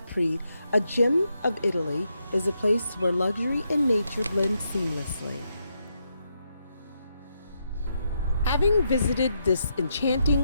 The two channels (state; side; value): inverted; both; correlation -0.81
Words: a gem of Italy, is a place where luxury and nature blend seamlessly. Having visited this